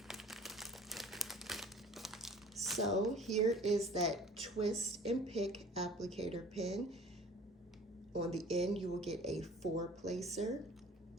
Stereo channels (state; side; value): normal; both; correlation 0.46